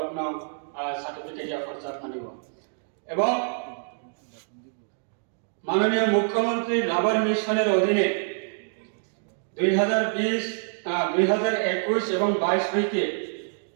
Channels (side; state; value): left; silent; digital silence